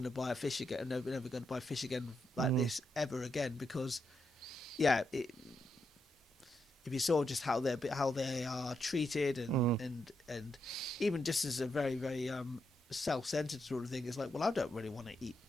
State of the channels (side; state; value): both; normal; correlation 0.82